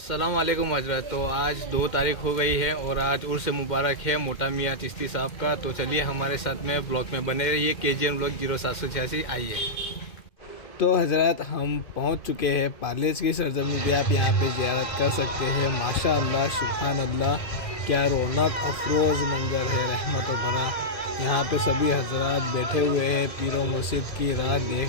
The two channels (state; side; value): late; right; 2.1 ms